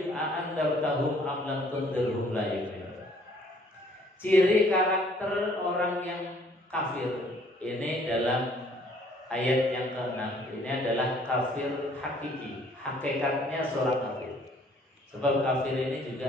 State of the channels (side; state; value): both; normal; correlation 0.60